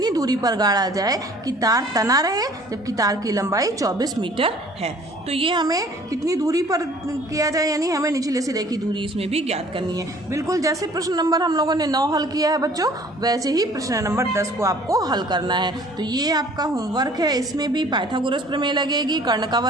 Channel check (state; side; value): normal; both; correlation 0.53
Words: दूरी पर गाड़ा जाए कि तार तना रहे, जबकि तार की लंबाई 24 मीटर है। तो ये हमें कितनी दूरी पर किया जाए, यानी हमें निचले सिरे की दूरी इसमें भी ज्ञात करनी है। बिल्कुल जैसे प्रश्न नंबर हम लोगों ने 9 हल किया है बच्चों, वैसे ही प्रश्न नंबर 10 को आपको हल करना है। तो ये आपका होमवर्क है, इसमें भी पाइथागोरस प्रमेय लगेगी, कर्ण का